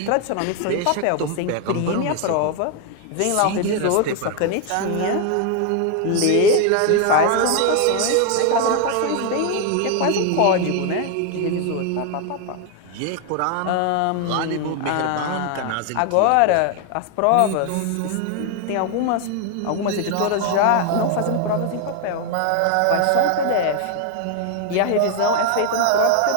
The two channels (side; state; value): both; different; correlation 0.01